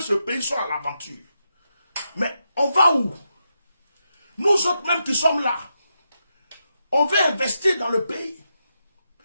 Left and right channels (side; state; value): both; inverted; correlation -0.85